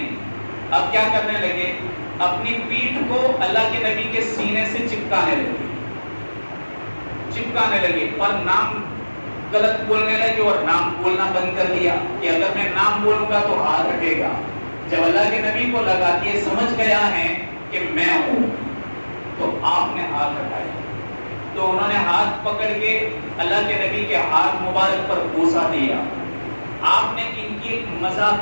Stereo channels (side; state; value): both; inverted; correlation -1.00